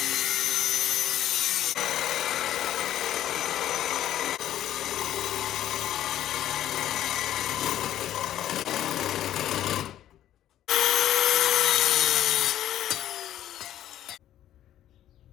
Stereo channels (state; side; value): quieter; right; 12.1 dB